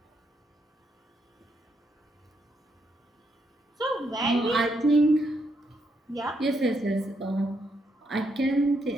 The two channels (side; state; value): both; normal; correlation 0.78